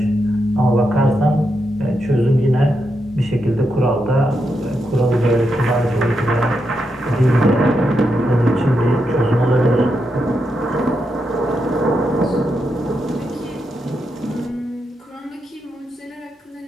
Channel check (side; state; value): both; normal; correlation 0.84